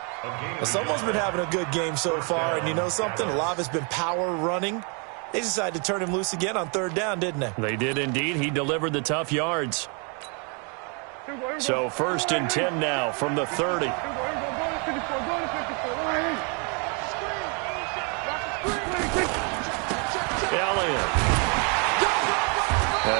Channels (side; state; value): left; quieter; 35.6 dB